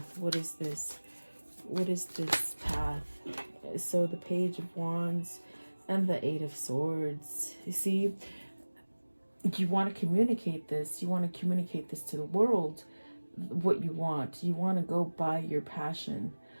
What is this? What is this path? So the Page of Wands and the 8 of Swords. You see, you want to communicate this. You want to communicate this to the world, what you want. You want to go by your passion.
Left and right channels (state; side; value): inverted; both; correlation -1.00